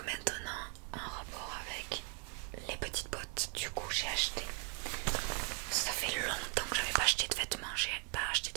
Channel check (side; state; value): left; quieter; 36.8 dB